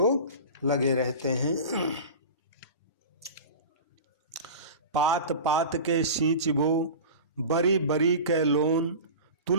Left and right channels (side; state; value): both; inverted; correlation -0.33